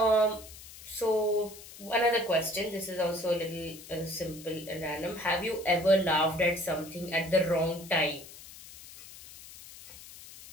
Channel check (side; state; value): left; noise; hiss, 17 dB below the sound